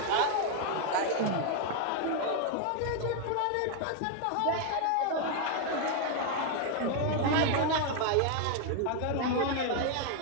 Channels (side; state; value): both; different; correlation 0.00